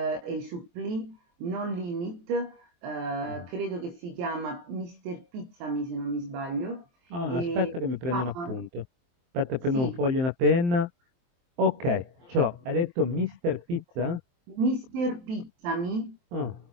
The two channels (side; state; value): left; late; 23 ms